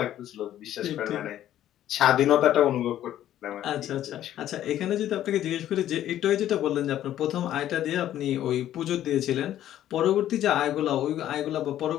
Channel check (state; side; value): quieter; right; 12.1 dB